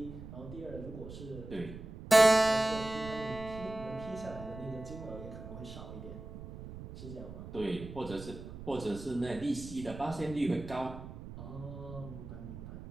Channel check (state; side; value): noise; right; rumble, 12 dB below the sound